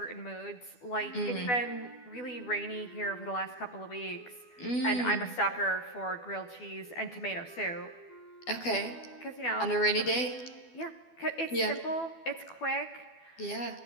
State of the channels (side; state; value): right; late; 12 ms